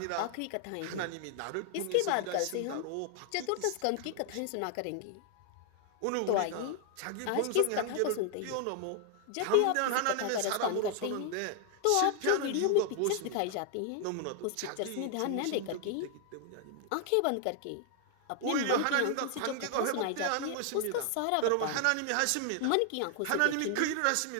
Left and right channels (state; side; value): different; both; correlation 0.00